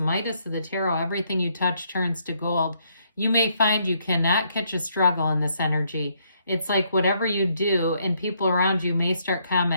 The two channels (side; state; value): both; inverted; correlation -0.72